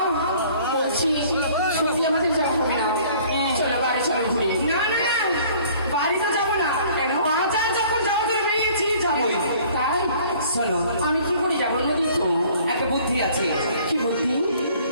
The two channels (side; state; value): both; inverted; correlation -0.54